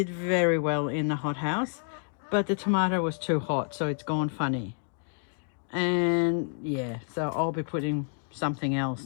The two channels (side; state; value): right; silent; digital silence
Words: very well in the hothouse, but the tomato was too hot, so it's gone funny. And yeah, so I'll be putting something else